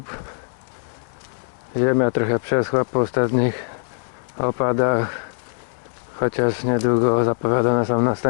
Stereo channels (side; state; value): right; silent; digital silence